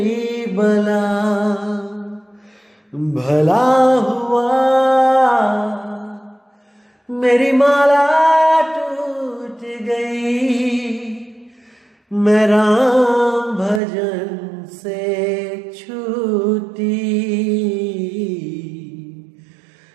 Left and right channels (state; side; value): drops out; left; at 13.8 s